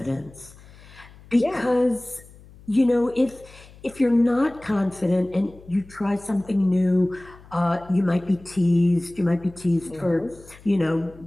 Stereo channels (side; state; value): left; noise; hum, 22 dB below the sound